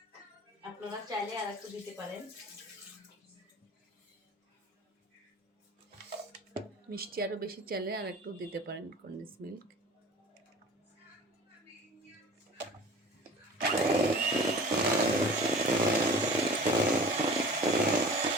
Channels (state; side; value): normal; both; correlation 0.41